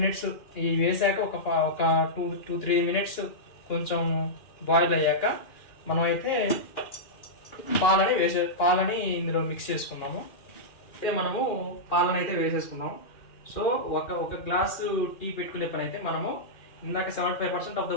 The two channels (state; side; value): late; right; 2.4 ms